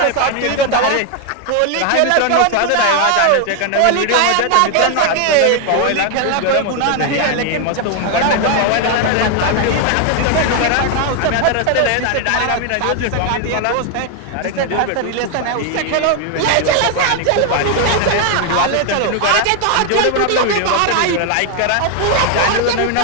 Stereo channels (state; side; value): different; both; correlation 0.01